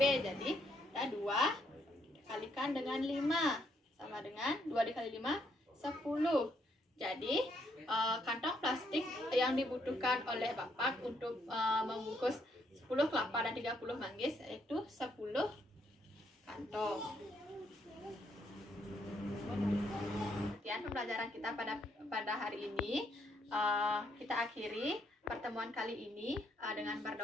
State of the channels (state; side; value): normal; both; correlation 0.73